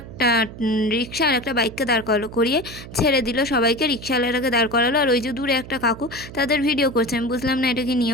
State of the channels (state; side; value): noise; right; hum, 14 dB below the sound